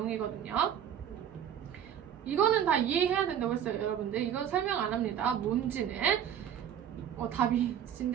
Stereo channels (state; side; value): quieter; left; 9.4 dB